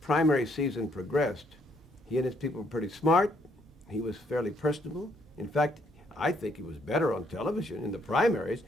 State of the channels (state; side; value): normal; both; correlation 0.70